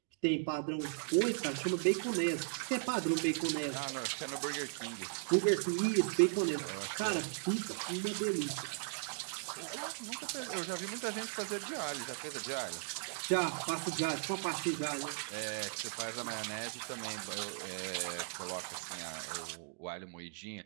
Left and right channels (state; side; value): silent; left; digital silence